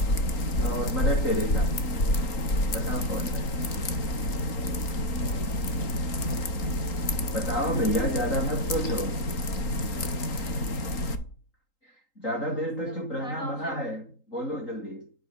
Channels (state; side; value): late; right; 3.8 ms